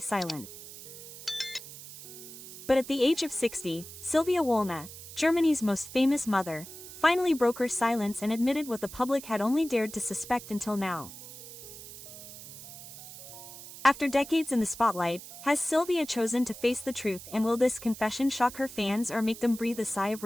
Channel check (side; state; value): right; noise; hiss, 14 dB below the sound